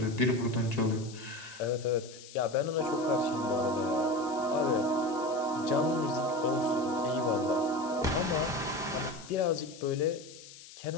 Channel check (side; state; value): left; noise; hiss, 17 dB below the sound